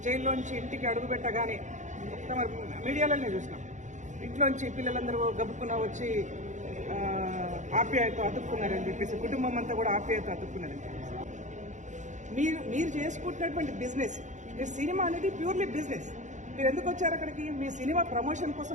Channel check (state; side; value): late; left; 0.35 ms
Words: జైల్లోంచి ఇంటికి అడుగుపెట్టగానే మొత్తం మీడియాలోనే చూసినాం. ఇంట్లోంచి పిల్లలందరూ గబుక్కున వచ్చి ఆప్యాయత అతుక్కున్నారని చెప్పేసి, కుటుంబం అంతా కూడా ఆప్యాయత అతుక్కున్నారని చెప్పేసి. మీరు చేసుకుంటున్నటువంటి బిజినెస్, మీ సినిమా అనేది ప్యూర్లీ బిజినెస్. మీరు ఎందుకు వచ్చారు అక్కడికి? మీ సినిమా ప్రమోషన్